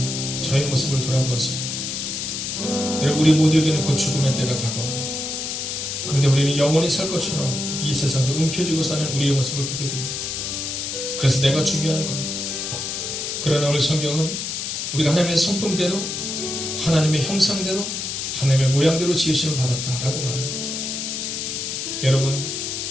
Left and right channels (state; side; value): noise; left; hiss, 4 dB below the sound